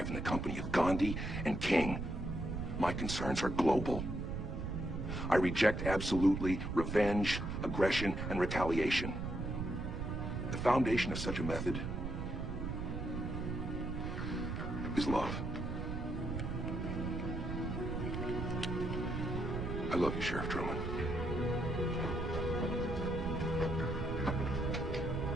in the company of Gandhi and King. My concerns are global. I reject absolutely revenge, aggression, and retaliation. The foundation of such a method is love. I love you, Sheriff Truman.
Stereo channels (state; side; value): noise; right; rumble, 3 dB below the sound